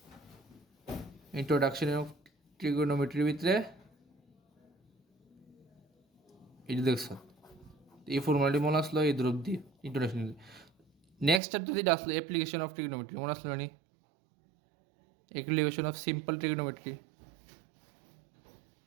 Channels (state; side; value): drops out; left; at 11.4 s